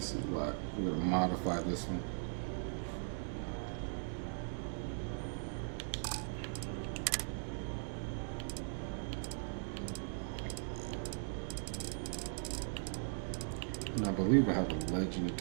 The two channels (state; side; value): silent; left; digital silence